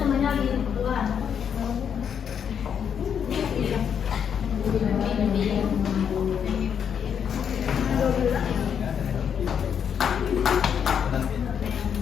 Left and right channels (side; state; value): right; quieter; 7.8 dB